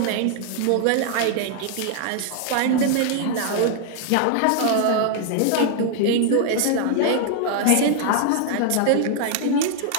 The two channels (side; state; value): both; different; correlation 0.00